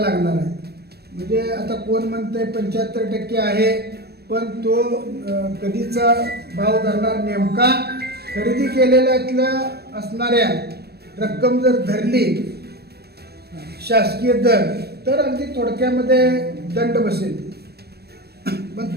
आहे. म्हणजे आता कोण म्हणते 75% आहे, पण तो कधीचा भाव धरणार नेमका खरेदी केलेल्यातल्या असणाऱ्या रक्कम जर धरली शासकीय दर तर अगदी थोडक्यामध्ये दंड बसेल. पण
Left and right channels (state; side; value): late; left; 0.47 ms